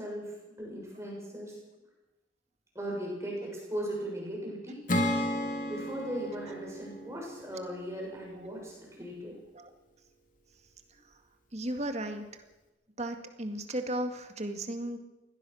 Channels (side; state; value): both; normal; correlation 0.59